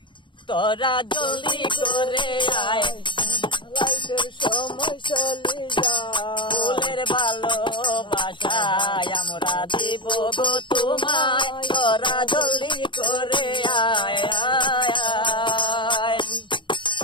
তোরা জলদি করে আয়, লাইফের সময় চলে যায়। ফুলের ভালোবাসা আমরা দিব গো তোমায়। তোরা জলদি করে আয় আয় আয়।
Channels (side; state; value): right; late; 0.23 ms